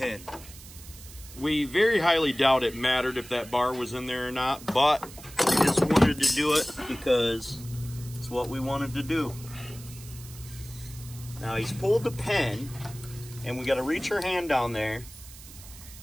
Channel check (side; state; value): right; noise; hiss, 17 dB below the sound